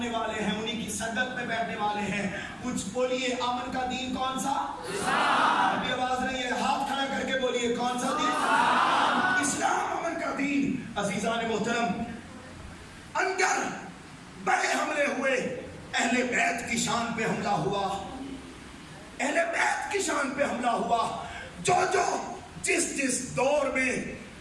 والے ہیں، انہی کی صدق میں بیٹھنے والے ہیں. کچھ بولیے امن کا دین کون سا؟ ابھی آواز نہیں ہے، ہاتھ کھڑا کر کے بولیے کون سا دین؟ اسلام امن کا دین. عزیزان محترم، اندر بڑے حملے ہوئے، اہل بیت کی شان پہ حملہ ہوا، اہل بیت کی شان پہ حملہ ہوا، جو جس دور میں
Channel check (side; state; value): both; identical; correlation 1.00